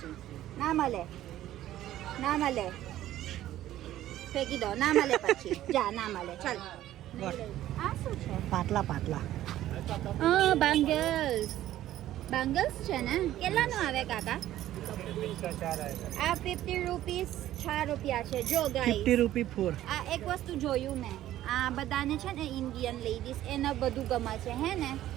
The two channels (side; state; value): left; quieter; 13.5 dB